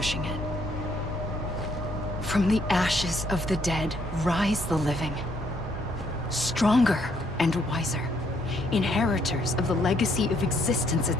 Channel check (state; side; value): noise; left; hum, 17 dB below the sound